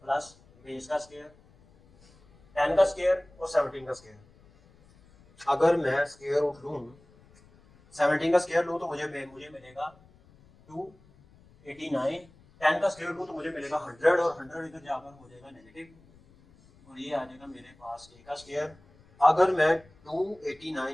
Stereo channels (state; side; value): noise; left; rumble, 27 dB below the sound